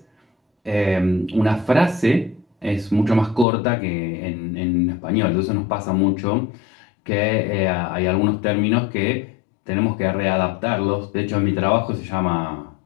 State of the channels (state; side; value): drops out; right; at 3.5 s